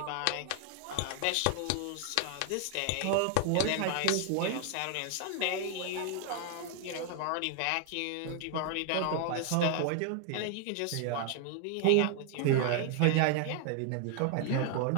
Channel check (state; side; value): different; both; correlation 0.00